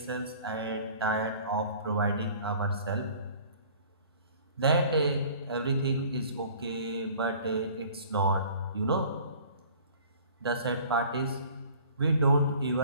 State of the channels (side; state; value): both; inverted; correlation -0.49